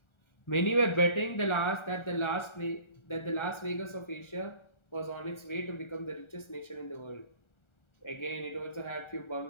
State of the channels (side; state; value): right; late; 1.4 ms